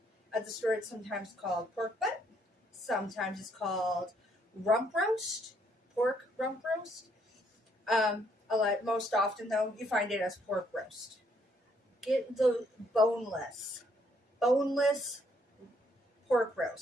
At the store, it's sometimes called pork butt. Sometimes it's called rump roast, pork rump roast. Most often, though, you find it as pork roast. Get the boneless pork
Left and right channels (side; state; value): both; normal; correlation 0.69